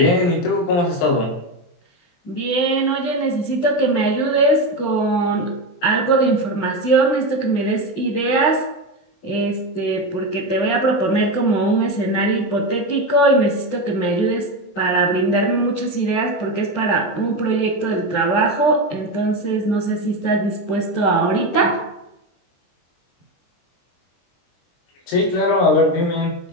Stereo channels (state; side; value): late; right; 23 ms